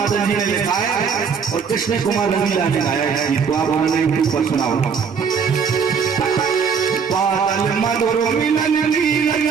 जी ने लिखाया और कृष्ण कुमार रंगीला ने गाया है गीत को, आप उन्होंने ऊपर सुनाओ। बादल मधुर मिलन की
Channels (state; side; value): quieter; left; 6.3 dB